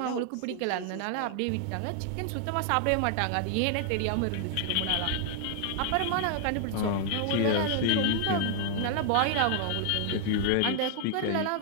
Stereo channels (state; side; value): different; both; correlation 0.00